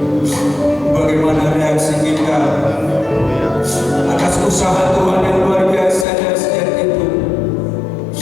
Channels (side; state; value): right; drops out; at 6.1 s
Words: Bagaimana reaksi kita atas usaha Tuhan yang luar biasa dan sejak itu?